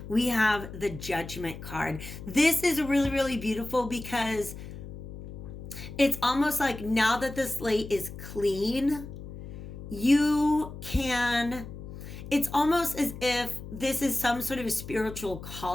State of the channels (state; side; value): noise; left; hum, 12 dB below the sound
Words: we have the Judgment card. This is really beautiful because it's almost like now that the slate is clean, it's almost as if this is some sort of a spiritual